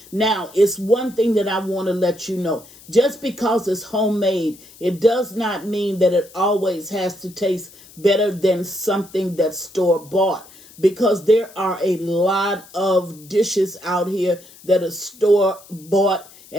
Now, it's one thing that I want to let you know. Just because it's homemade, it does not mean that it always has to taste better than something that's store-bought. Because there are a lot of dishes out here that are store-bought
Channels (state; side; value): noise; left; hiss, 22 dB below the sound